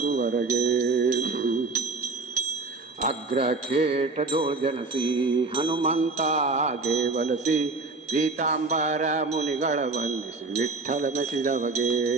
ಅಗ್ರಖೇಟದೋಳ್ ಜನಸಿ ಹನುಮಂತಾಗೆ ವಲಸಿ, ಪೀತಾಂಬರ ಮುನಿಗಳ ವಂದಿಸಿ ವಿಠ್ಠಲ ಮೆಸಿದವಗೆ.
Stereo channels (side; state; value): left; quieter; 3.7 dB